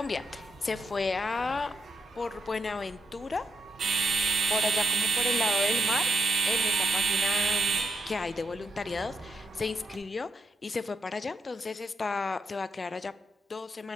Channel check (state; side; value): normal; both; correlation 0.80